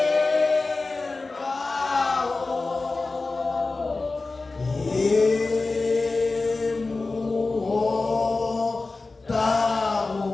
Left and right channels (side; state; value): right; quieter; 3.6 dB